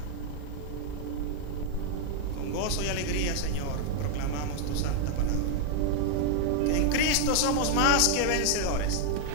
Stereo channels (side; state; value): both; different; correlation 0.00